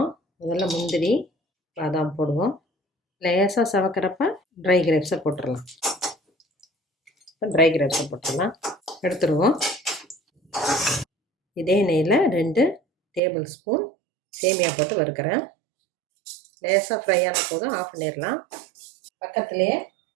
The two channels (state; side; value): drops out; left; at 13.2 s